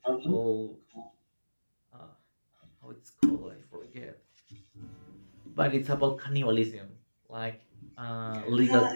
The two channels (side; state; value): both; inverted; correlation -1.00